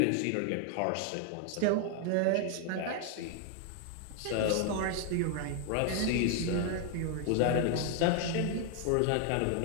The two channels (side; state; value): both; different; correlation 0.00